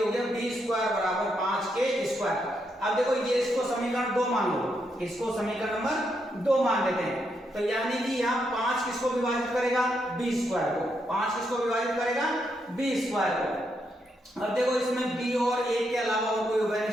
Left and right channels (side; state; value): both; normal; correlation 0.80